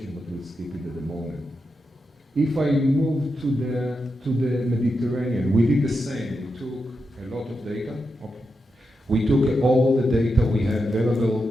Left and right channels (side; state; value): both; normal; correlation 0.87